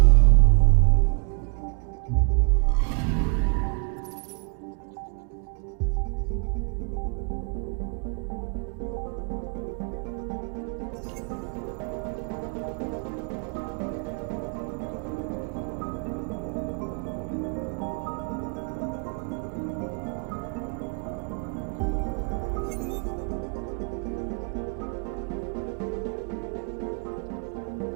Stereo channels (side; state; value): left; quieter; 38.3 dB